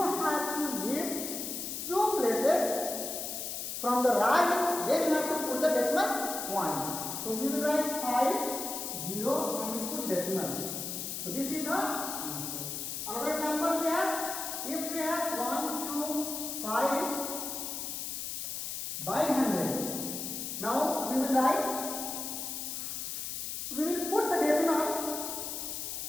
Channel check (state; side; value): noise; left; hiss, 5 dB below the sound